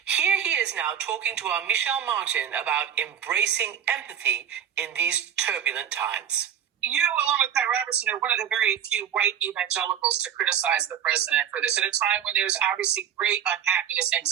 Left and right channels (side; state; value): left; quieter; 8.9 dB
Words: Here he is now talking to our Michelle Martin about embracing empathy in these turbulent times. You, along with Pat Robertson, are one of the very few white evangelicals to criticize the president for this at a time when there's obviously great unhappiness,